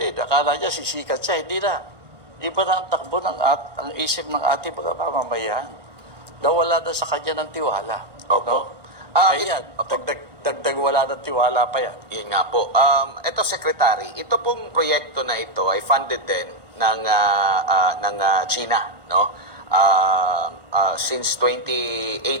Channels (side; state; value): left; late; 1.5 ms